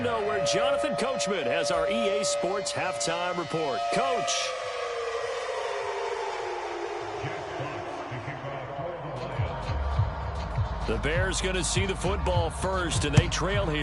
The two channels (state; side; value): identical; both; correlation 1.00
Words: where Jonathan Coachman has our EA Sports halftime report. Coach. The Bears going to see the football first, and they trail